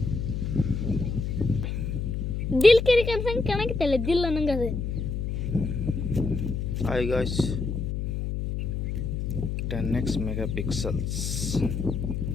ದಿಲ್ ಕೆರಿ ಕನ್ಸಂಗೆ ಕಾಣಕತ್ತಲ್ಲ, ದಿಲ್ ಅನ್ನಂಗೆ ಅದು. Hi guys, 10x megapixels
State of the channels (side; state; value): left; noise; hum, 2 dB below the sound